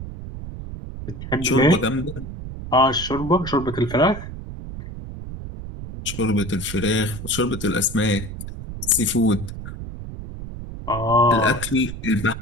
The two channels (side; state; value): right; noise; rumble, 10 dB below the sound